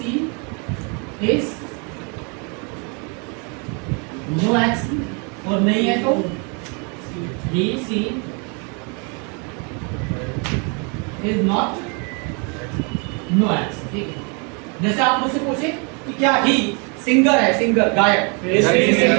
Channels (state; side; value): quieter; left; 34.7 dB